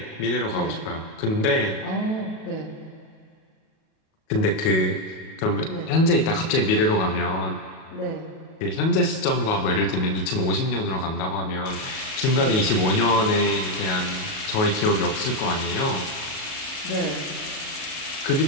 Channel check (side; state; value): right; late; 37 ms